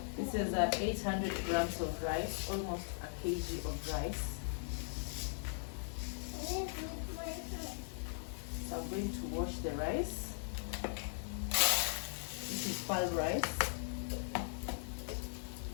This is 800 grams of rice, almost a kg of rice. So I'm going to wash the rice. This is pearl rice.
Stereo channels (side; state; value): right; silent; digital silence